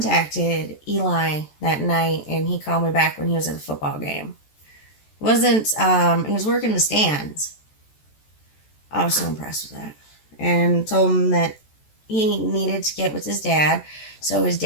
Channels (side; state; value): right; late; 14 ms